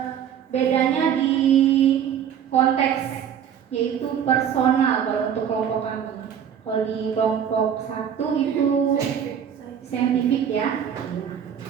bedanya di konteks, yaitu personal kalau untuk kelompok kami. Kalau di kelompok 1 itu saintifik ya.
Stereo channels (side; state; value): left; quieter; 8.7 dB